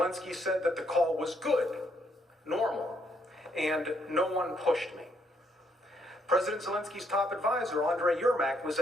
said that the call was good, normal, and no one pushed me. President Zelensky's top advisor, Andrei Yermak, was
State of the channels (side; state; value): both; normal; correlation 0.72